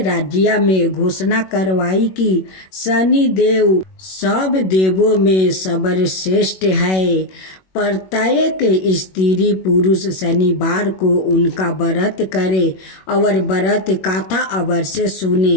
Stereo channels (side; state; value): right; late; 21 ms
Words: राज्य में घोषणा करवाई कि शनि देव सब देवों में सर्वश्रेष्ठ है। प्रत्येक स्त्री पुरुष शनिवार को उनका व्रत करे और व्रत कथा अवश्य सुने।